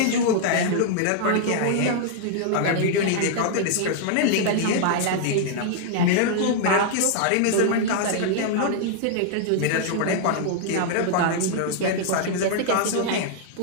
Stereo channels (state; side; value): different; both; correlation -0.01